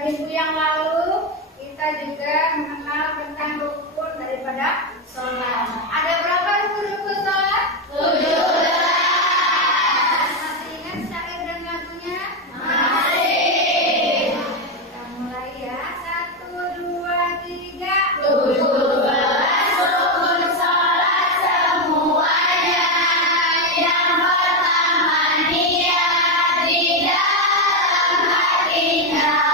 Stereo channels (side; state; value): both; normal; correlation 0.08